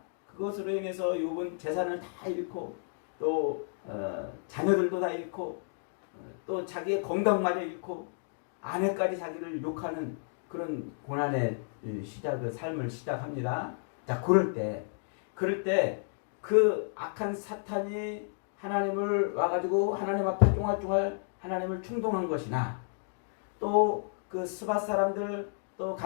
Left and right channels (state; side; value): silent; right; digital silence